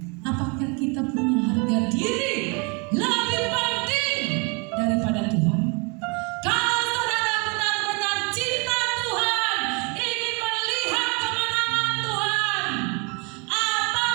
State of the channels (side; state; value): left; quieter; 32.0 dB